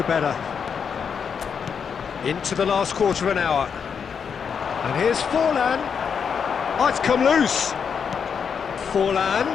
better. Into the last quarter of an hour. And here's Forlan. Oh, it's come loose. Forlan.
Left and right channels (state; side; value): quieter; right; 6.7 dB